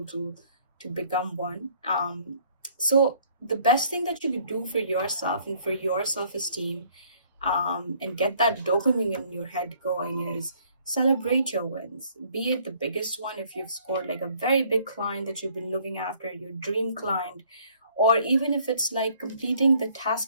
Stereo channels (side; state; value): both; inverted; correlation -0.61